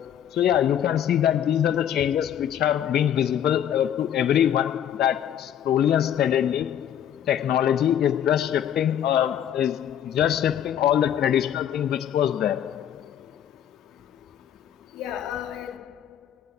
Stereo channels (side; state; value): right; quieter; 9.9 dB